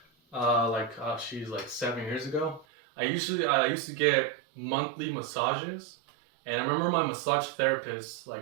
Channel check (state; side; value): drops out; left; at 2.7 s